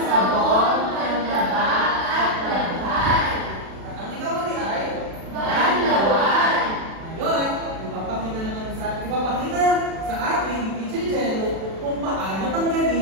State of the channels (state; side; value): late; left; 36 ms